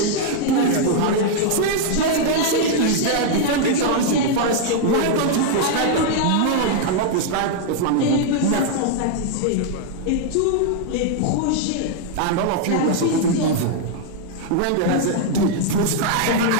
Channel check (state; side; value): different; both; correlation 0.00